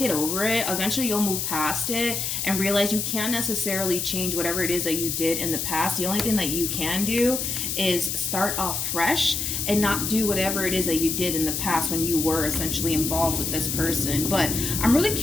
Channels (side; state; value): left; noise; hiss, 2 dB below the sound